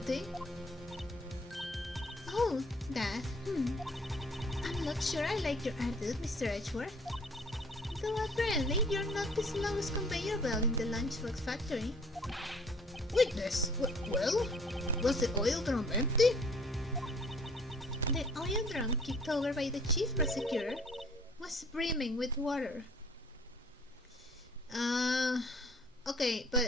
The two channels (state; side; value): normal; both; correlation 0.56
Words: Oh, that. I'm not sure I like your attitude, Mr. Edgeworth. Though apparently you're not the slowest conveyor belt in the lunchbox factory. Witness, well, was the oil drum empty? The oil drum kicked over by the chief prosecutor was brimming with water. Okay,